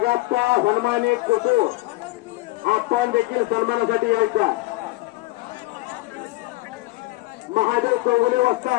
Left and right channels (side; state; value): right; quieter; 20.8 dB